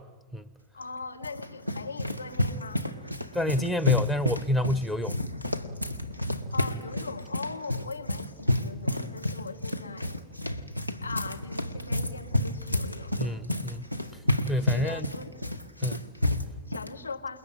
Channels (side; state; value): both; inverted; correlation -0.31